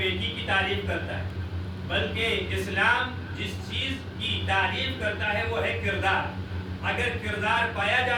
کی تعریف کرتا ہے، بلکہ اسلام جس چیز کی تعریف کرتا ہے وہ ہے کردار. اگر کردار پایا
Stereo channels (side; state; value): both; identical; correlation 1.00